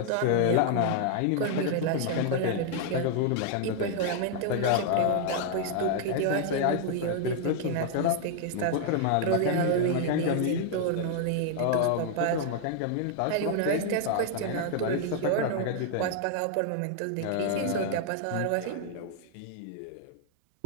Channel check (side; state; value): both; different; correlation 0.00